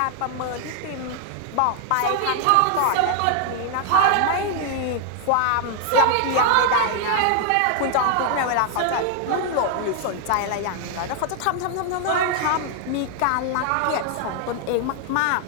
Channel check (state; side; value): different; both; correlation 0.00